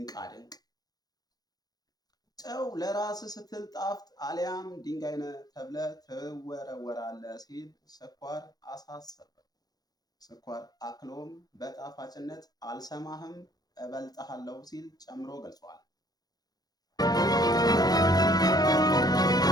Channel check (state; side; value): late; right; 0.19 ms